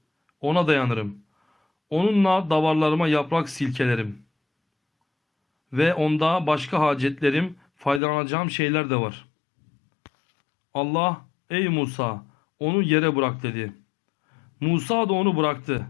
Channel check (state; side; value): drops out; right; at 8.0 s